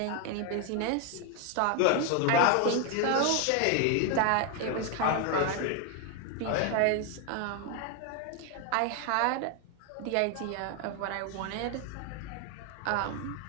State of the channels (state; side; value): different; both; correlation 0.01